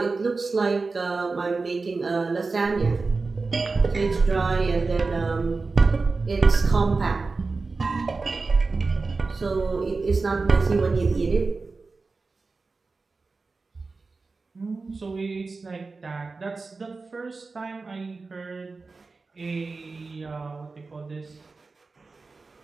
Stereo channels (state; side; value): quieter; left; 4.0 dB